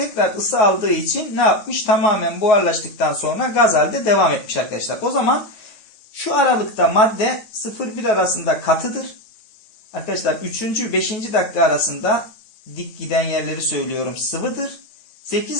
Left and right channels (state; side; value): late; right; 9.0 ms